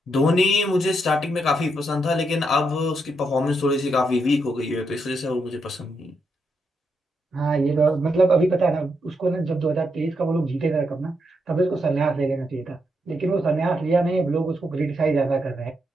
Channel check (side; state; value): both; normal; correlation 0.81